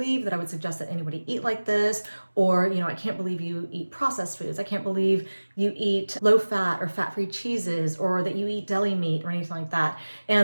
that I would suggest that anybody eat like this, or, I can't believe you eat processed foods. I can't believe you eat low fat or fat-free cheeses, or that you eat deli meat or anything like that.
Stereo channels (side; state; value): both; inverted; correlation -1.00